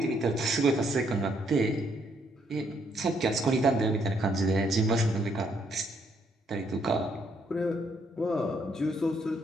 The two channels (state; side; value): normal; both; correlation 0.71